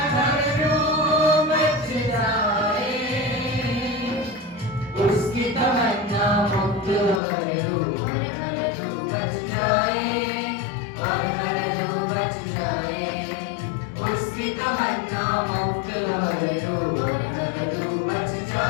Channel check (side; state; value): right; drops out; at 7.2 s